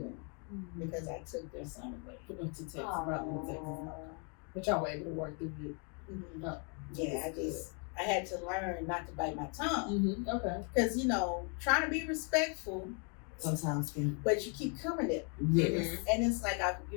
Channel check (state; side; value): quieter; right; 37.4 dB